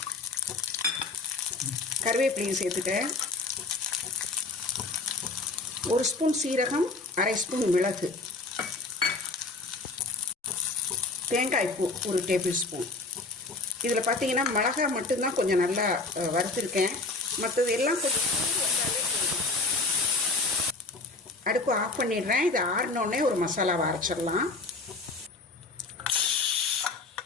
கருவேப்பிலையும் சேர்த்துட்டேன். 1 ஸ்பூன் சீரகம், 1/2 ஸ்பூன் மிளகு, தேங்காய் பூ ஒரு டேபிள் ஸ்பூன். இதில் பார்த்தீங்கன்னா மிளகாய் மட்டும்தான் கொஞ்சம் நல்லா வறுத்துருக்கேன். மற்றது எல்லாம் கொஞ்சம் அடுப்பு ஆஃப் பண்ணிடுறேன். இது ஆறினோடனே ஒரு மசாலாவை அரைச்சிடலாம்.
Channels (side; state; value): right; quieter; 3.6 dB